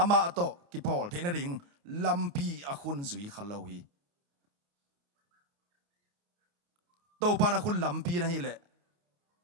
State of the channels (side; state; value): left; late; 29 ms